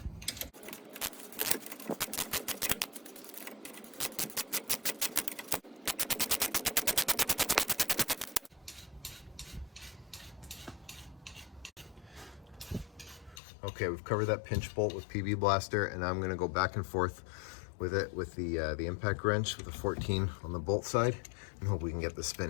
Okay, we've covered that pinch bolt with PB Blaster, and I'm going to go back and forth with it with the impact wrench with the 14 on the bolt side and hope we can get this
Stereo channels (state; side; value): drops out; right; at 13.4 s